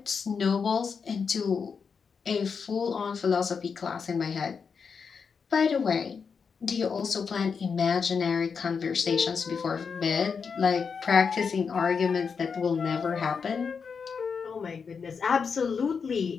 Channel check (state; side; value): quieter; right; 5.8 dB